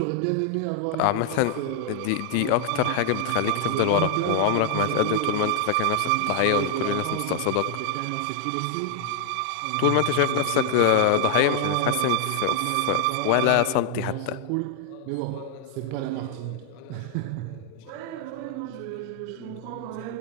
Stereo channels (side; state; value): both; different; correlation 0.00